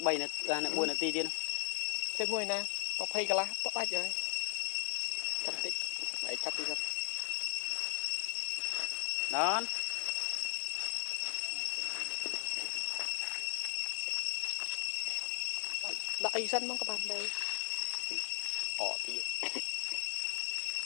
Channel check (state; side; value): silent; right; 53 dB below the other